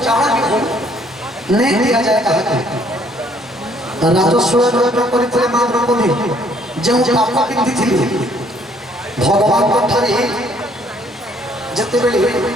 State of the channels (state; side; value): normal; both; correlation 0.63